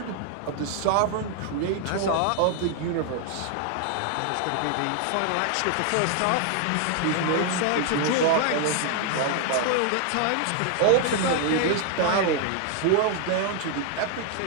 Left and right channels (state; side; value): different; both; correlation 0.00